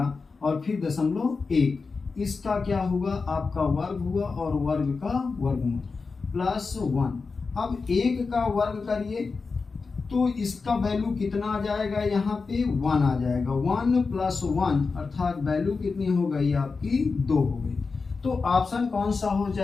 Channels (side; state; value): right; quieter; 4.5 dB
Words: और फिर 0.1, इसका क्या हुआ आपका वर्ग हुआ और वर्ग का वर्गमूल +1। अब 1 का वर्ग करिए तो इसका वैल्यू कितना आ जाएगा, यहाँ पे 1 आ जाएगा, 1 + 1 अर्थात वैल्यू कितनी हो गई आपकी 2 हो गई। तो ऑप्शन कौन सा हो